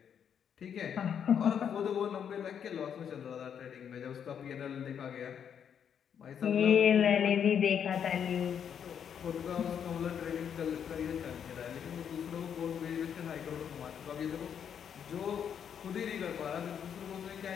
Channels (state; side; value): quieter; right; 8.1 dB